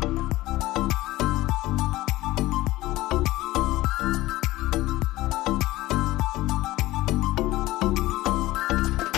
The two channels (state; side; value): quieter; right; 17.7 dB